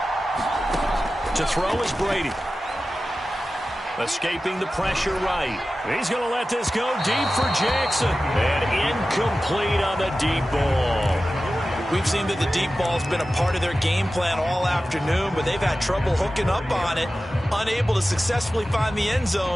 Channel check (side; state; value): both; normal; correlation 0.94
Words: To throw is Brady. Escaping the pressure right. He's going to let this go deep for Jackson. And incomplete on the deep ball. We've seen that the deep ball's been a part of their game plan all afternoon, but they've had trouble hooking up on it, unable to successfully find the end